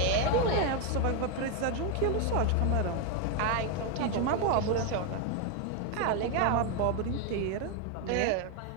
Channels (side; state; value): both; different; correlation 0.01